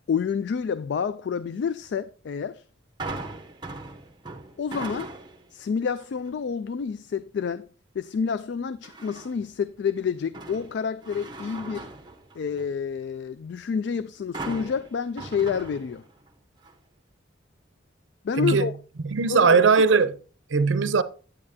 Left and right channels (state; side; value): normal; both; correlation 0.03